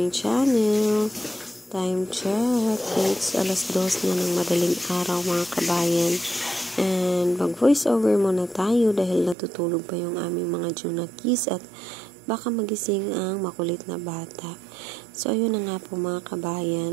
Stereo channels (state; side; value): drops out; left; at 9.3 s